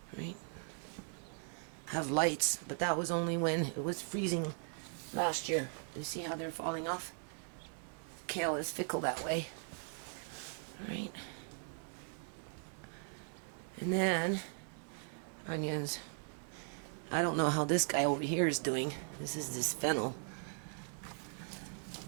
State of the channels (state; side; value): silent; left; 52 dB below the other